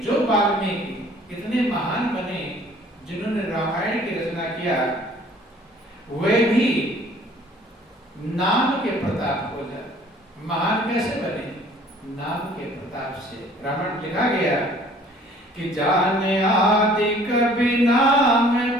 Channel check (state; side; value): normal; both; correlation 0.54